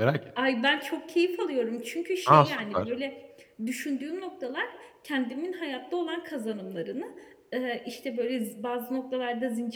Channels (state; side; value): identical; both; correlation 1.00